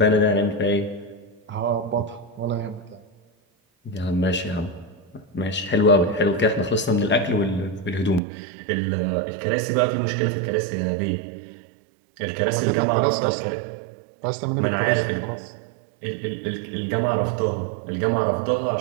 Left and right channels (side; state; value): left; drops out; at 8.2 s